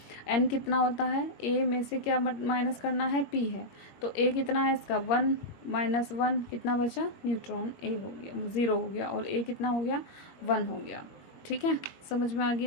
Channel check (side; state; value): right; late; 21 ms